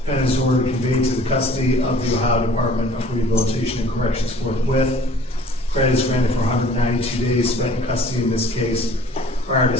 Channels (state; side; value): normal; both; correlation 0.51